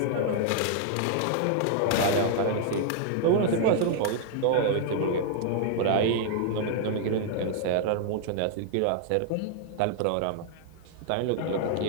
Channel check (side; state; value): both; different; correlation -0.01